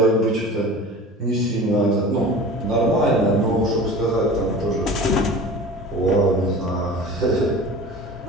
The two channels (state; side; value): normal; both; correlation 0.38